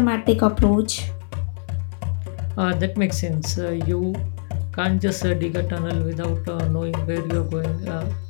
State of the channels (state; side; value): silent; right; digital silence